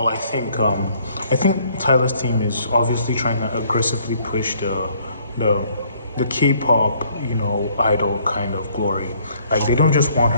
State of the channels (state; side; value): inverted; both; correlation -0.64